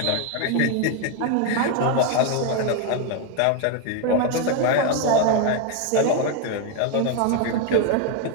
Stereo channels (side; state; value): both; different; correlation 0.01